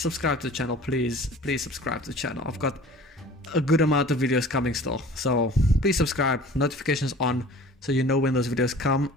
to the channel, please. Please subscribe to the channel. I've got a good amount of videos coming still. So please subscribe, notifications on, so you know when those videos come,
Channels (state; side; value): normal; both; correlation 0.45